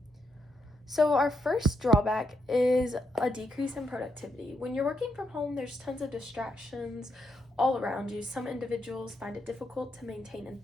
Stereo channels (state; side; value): normal; both; correlation 0.79